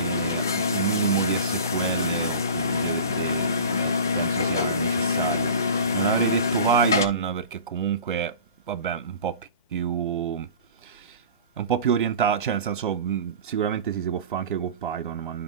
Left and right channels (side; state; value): both; inverted; correlation -0.38